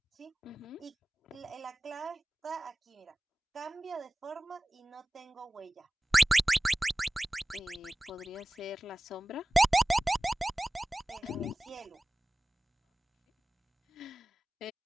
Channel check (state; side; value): normal; both; correlation 0.98